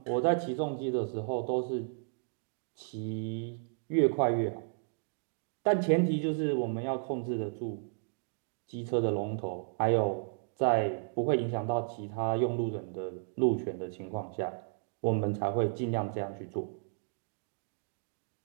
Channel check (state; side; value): silent; left; digital silence